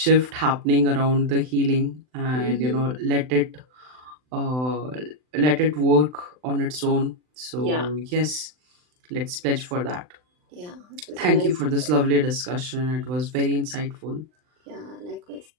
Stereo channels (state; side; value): late; left; 39 ms